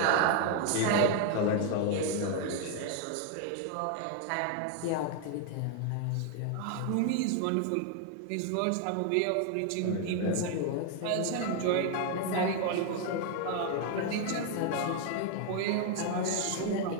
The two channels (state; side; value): different; both; correlation 0.00